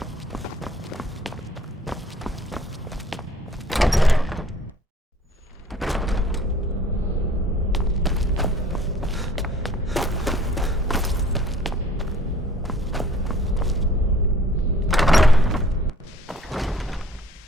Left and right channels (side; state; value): both; normal; correlation 0.55